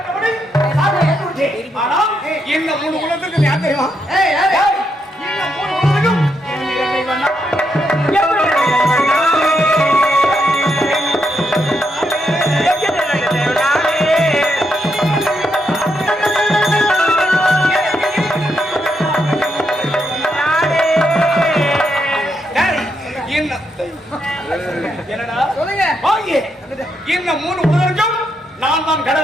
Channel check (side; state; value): both; normal; correlation 0.80